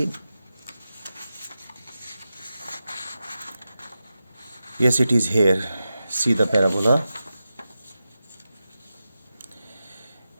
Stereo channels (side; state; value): both; inverted; correlation -0.92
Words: yes it is here, see the parabola।